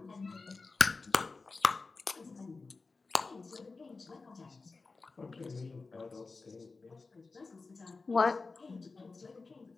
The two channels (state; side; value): quieter; right; 4.0 dB